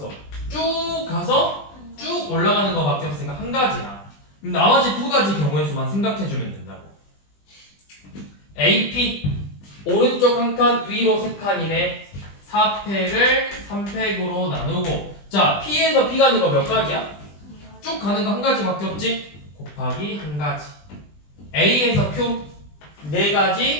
쭉 가서 쭉 올라가는 거밖에 없으니까 한 가지야. 그럼 나머지 두 가지 경우의 수만 생각해주면 된다고. AP 오른쪽 한 칸, 위로 세 칸이네. 4팩을 3팩으로 나누고, 자 P에서 B 가는 거 몇 가지야? 쭉 가는 거 한 가지밖에 없지? 곱하기 한 가지. A에서 Q 네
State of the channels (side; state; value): right; late; 20 ms